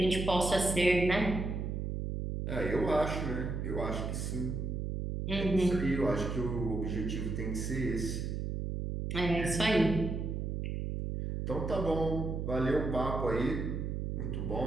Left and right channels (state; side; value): noise; right; hum, 3 dB below the sound